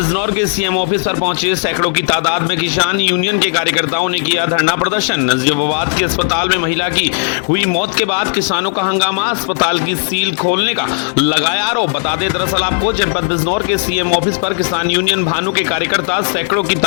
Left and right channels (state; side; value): silent; right; digital silence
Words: के सीएम ऑफिस पर पहुंचे सैकड़ों की तादाद में किसान यूनियन के कार्यकर्ताओं ने किया धरना प्रदर्शन। नजीबाबाद के अस्पताल में महिला की हुई मौत के बाद किसानों का हंगामा, अस्पताल की सील खोलने का लगाया आरोप। बता दें दरअसल आपको जनपद बिजनौर के सीएम ऑफिस पर किसान यूनियन भानु के कार्यकर्ता सैकड़ों की